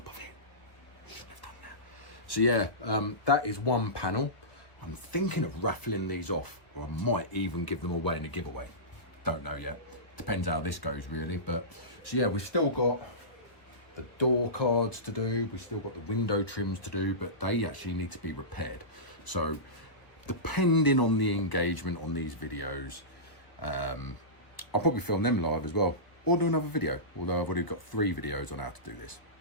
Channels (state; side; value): late; right; 1.2 ms